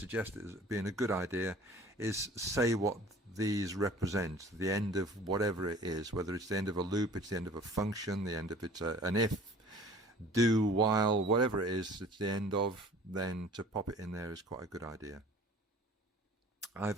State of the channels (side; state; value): both; normal; correlation 0.48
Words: it as being a good idea, is say what these represent, the end of whatever it is, whether it's the end of a loop, it's the end of a function, the end of it's an if, do, while, whatever it is it's the end of, then to pop it in there is quite a good idea.